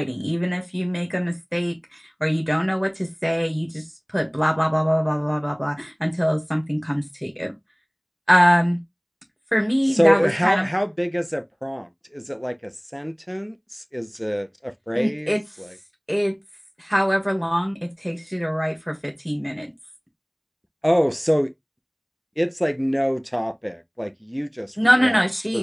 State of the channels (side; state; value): both; identical; correlation 1.00